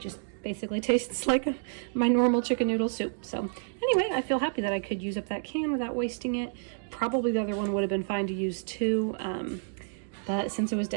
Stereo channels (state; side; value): silent; left; digital silence